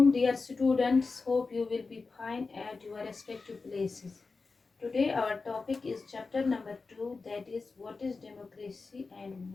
dear students. Hope you will be fine at your respective places. Today, our topic is chapter number 2, that is, what is democracy and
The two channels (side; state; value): right; quieter; 4.2 dB